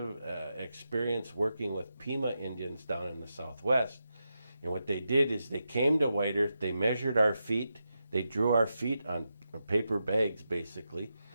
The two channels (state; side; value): inverted; both; correlation -0.87